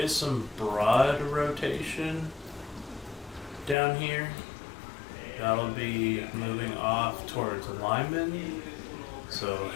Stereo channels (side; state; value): right; drops out; at 3.8 s